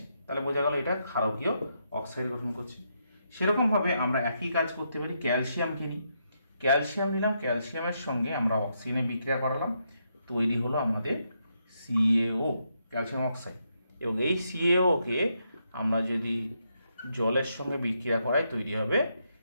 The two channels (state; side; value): inverted; both; correlation -0.79